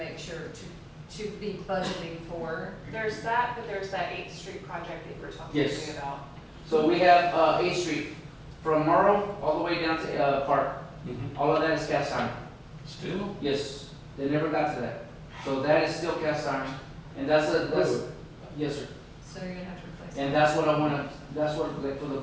sure to be budgeting for. There's that, but there's that 8th Street project that you were talking Yes. to me about. So we have, 8th Street, from Morrow all the way down to, Park. Mhm. All of that is cast iron. Still? Yes, they never got to that. So that is still cast iron. And that's, yes, sir. So you're gonna have to replace it. And that's what I wanna, that's what, like, for the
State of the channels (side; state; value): both; identical; correlation 1.00